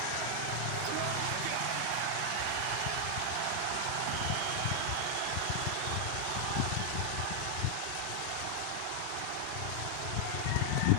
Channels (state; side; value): different; both; correlation 0.00